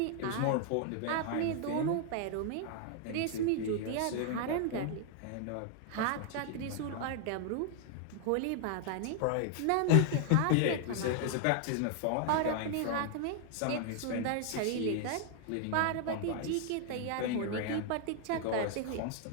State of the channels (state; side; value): different; both; correlation 0.00